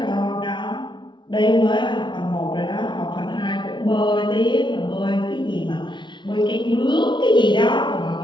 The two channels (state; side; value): late; right; 0.23 ms